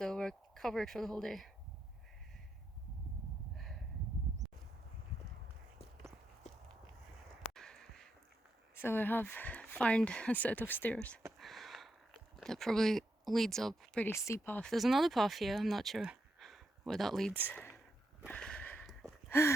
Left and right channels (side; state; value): both; normal; correlation 0.83